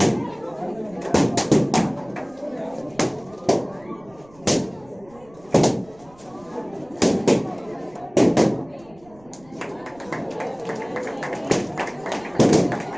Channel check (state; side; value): noise; right; rumble, 27 dB below the sound